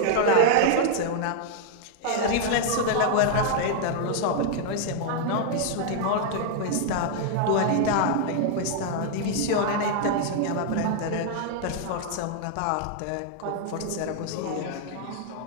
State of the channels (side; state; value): both; different; correlation 0.00